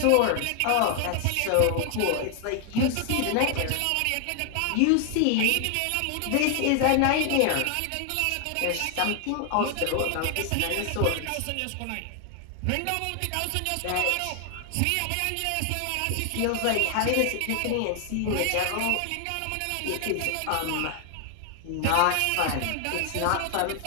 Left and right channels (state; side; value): different; both; correlation 0.00